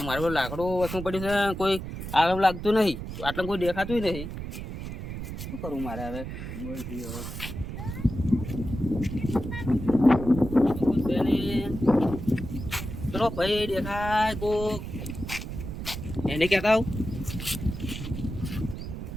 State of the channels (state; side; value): noise; right; rumble, 7 dB below the sound